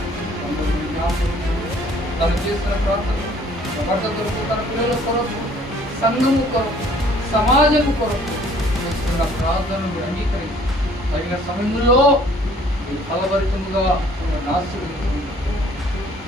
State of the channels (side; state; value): both; normal; correlation 0.57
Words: తను చేస్తున్న ప్రార్థన భర్త కొరకు, తన పిల్లల కొరకు, సంఘము కొరకు, సమాజము కొరకు చేస్తున్న నా ప్రార్థనలు మీరు అంగీకరించి తగిన సమయంలో మీరు ఫలభరితముగా ఆశీర్వదించండి.